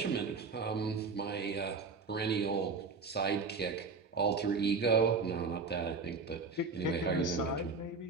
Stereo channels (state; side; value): quieter; left; 4.5 dB